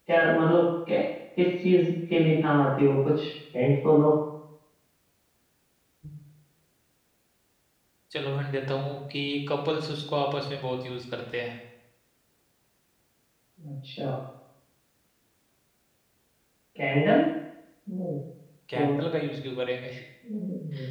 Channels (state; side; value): identical; both; correlation 1.00